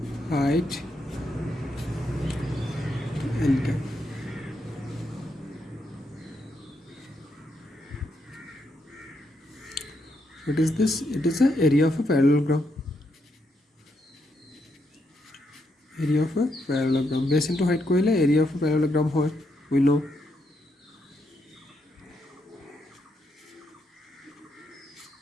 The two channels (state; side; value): normal; both; correlation 0.79